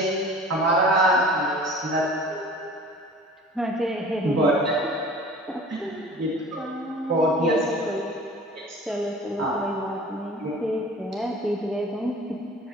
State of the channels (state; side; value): normal; both; correlation 0.43